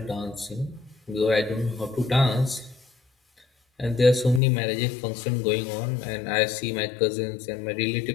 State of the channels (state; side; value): drops out; right; at 4.4 s